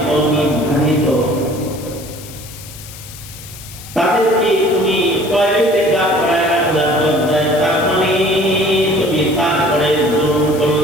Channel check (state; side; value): noise; left; hiss, 16 dB below the sound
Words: নির্ধারিত, তাদেরকে তুমি টয়লেটে দাঁড় করায় রাখলা দরজায়, তার মানে তুমি তারপরে জুলুম